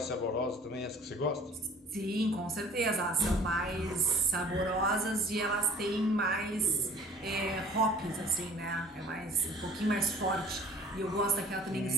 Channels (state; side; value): normal; both; correlation 0.50